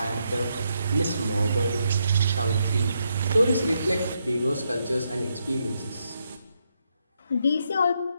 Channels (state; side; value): inverted; both; correlation -0.79